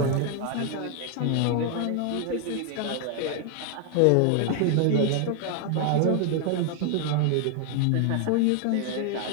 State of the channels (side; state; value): both; different; correlation 0.00